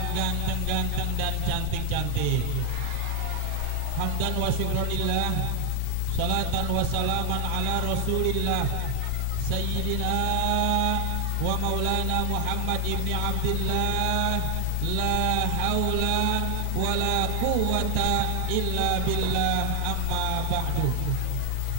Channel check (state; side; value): different; both; correlation 0.00